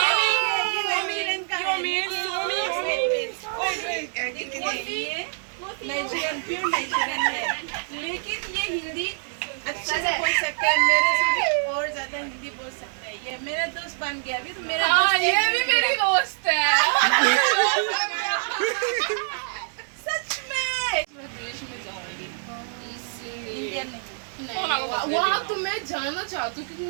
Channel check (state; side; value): silent; left; 61 dB below the other